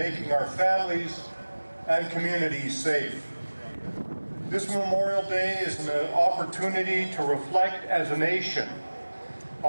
our families and communities safe. This Memorial Day is an opportunity to reflect as a nation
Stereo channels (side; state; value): both; inverted; correlation -1.00